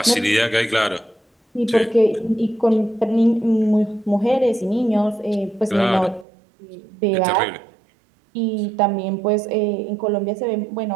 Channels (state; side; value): drops out; left; at 6.2 s